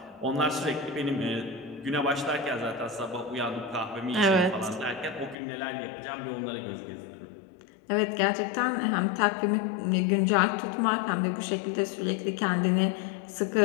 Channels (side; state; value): right; drops out; at 5.4 s